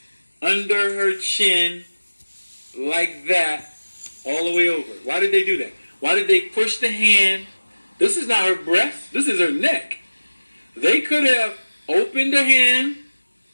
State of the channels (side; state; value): both; inverted; correlation -1.00